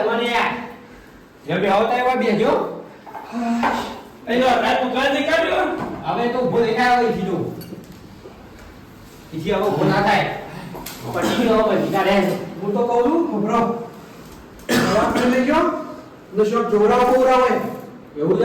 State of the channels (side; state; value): both; identical; correlation 1.00